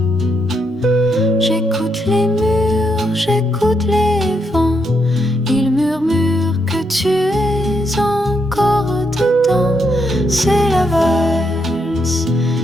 J'écoute les murs, j'écoute les vents, ils murmurent que tu es encore dedans. C'est la valse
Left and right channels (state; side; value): normal; both; correlation 0.78